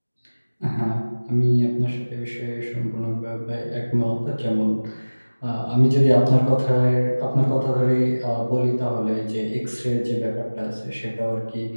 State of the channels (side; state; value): both; inverted; correlation -1.00